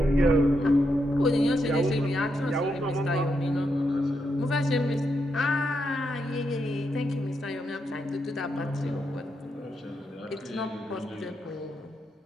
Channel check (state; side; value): normal; both; correlation 0.82